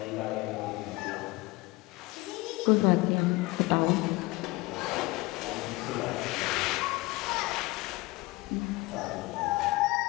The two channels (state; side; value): quieter; right; 22.0 dB